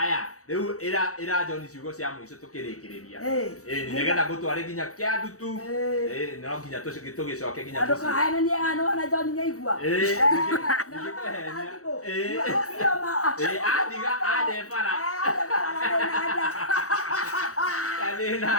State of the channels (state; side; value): late; right; 0.65 ms